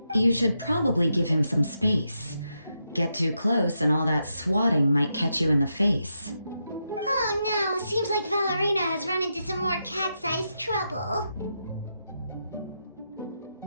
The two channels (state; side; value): inverted; both; correlation -0.84